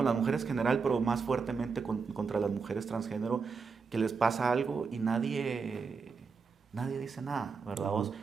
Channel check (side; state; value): left; quieter; 5.2 dB